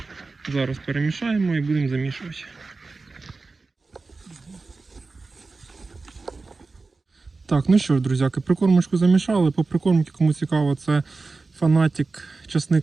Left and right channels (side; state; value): left; quieter; 3.9 dB